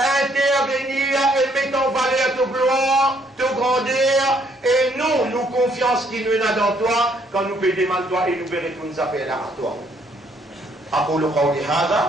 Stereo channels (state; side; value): normal; both; correlation 0.67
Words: et mettre en valeur ton gloire, ton grandeur, et nous confiance qui nous est dans toi, quand nous demandons toi et nous verrons nous appeler à toi. أقول قولي